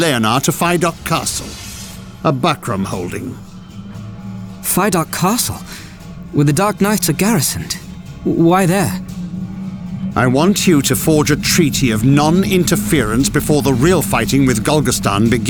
to Fidok Castle, a Bakram holding. Fidok Castle? Where the Dark Knights are garrisoned? Why there? I want you to forge a treaty of non-interference before the real fighting with Golgastan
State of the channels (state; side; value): identical; both; correlation 1.00